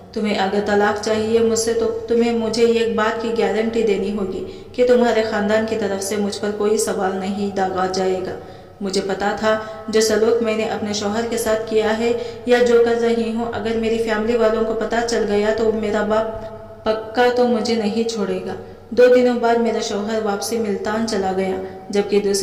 تمہیں اگر طلاق چاہیے مجھ سے تو تمہیں مجھے ایک بات کی گارنٹی دینی ہوگی کہ تمہارے خاندان کی طرف سے مجھ پر کوئی سوال نہیں داغا جائے گا۔ مجھے پتا تھا جو سلوک میں نے اپنے شوہر کے ساتھ کیا ہے یا جو کر رہی ہوں، اگر میری فیملی والوں کو پتا چل گیا تو میرا باپ پکا تو مجھے نہیں چھوڑے گا۔ 2 دنوں بعد میرا شوہر واپسی ملتان چلا گیا، جبکہ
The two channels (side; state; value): both; identical; correlation 1.00